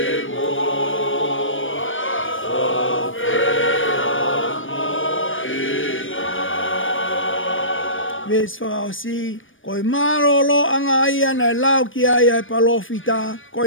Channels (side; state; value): right; late; 0.57 ms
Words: Ves whakaosi, koe marolo anga ia na lau ki aia e palofita,